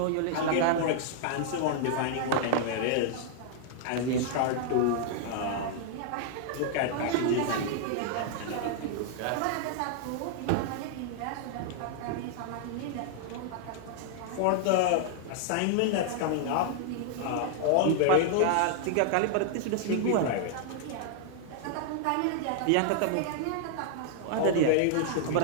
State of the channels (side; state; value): both; different; correlation -0.01